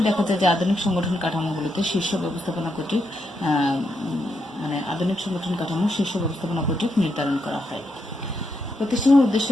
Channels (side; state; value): both; normal; correlation 0.81